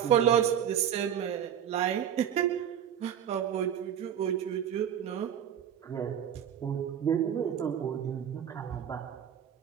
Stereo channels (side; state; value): left; quieter; 9.3 dB